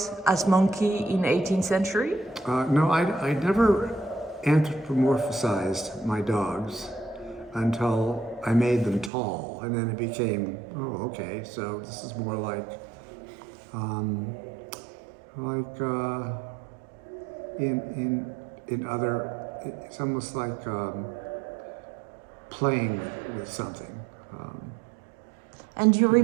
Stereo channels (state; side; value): drops out; left; at 9.1 s